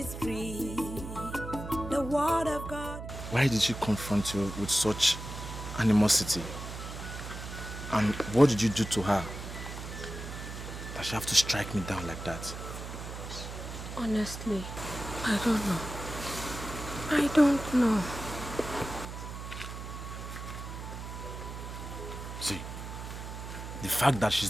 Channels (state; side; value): noise; right; hum, 9 dB below the sound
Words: free. The word of God. Why did she confront you with such animosity? And what did you do to her that she have to strike me down like that? Honestly, I don't know. I don't know. See, the fact that she's